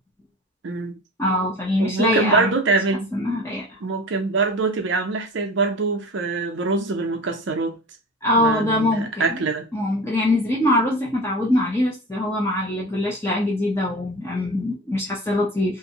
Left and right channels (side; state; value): both; normal; correlation 0.35